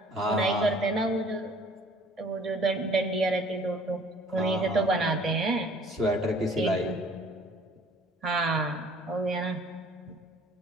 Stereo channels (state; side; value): normal; both; correlation 0.54